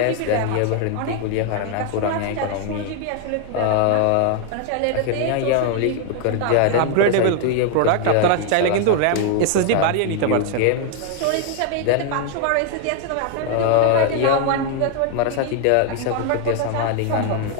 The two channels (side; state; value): both; different; correlation 0.01